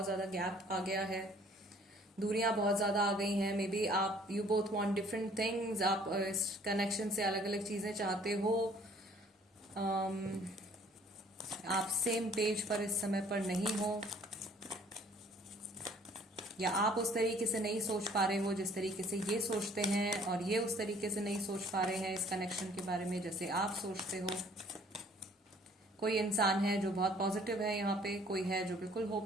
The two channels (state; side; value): normal; both; correlation 0.57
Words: ज्यादा गैप आ गया है, दूरियां बहुत ज्यादा आ गई हैं। मे बी आप you both want different things, आप इस कनेक्शन से अलग अलग चीजें चाहते हो, आप सेम पेज पर इस समय पर नहीं हो, या आप उस तरीके से नहीं सोच पा रहे हो जिस तरीके से ये सोचते हैं, और ये उस तरीके से नहीं सोच पा रहे हैं इस कनेक्शन के बारे में जैसे आप सोचते हो। कोई इंसान है जो बहुत पॉजिटिव है यहाँ पे, कोई है जो बिल्कुल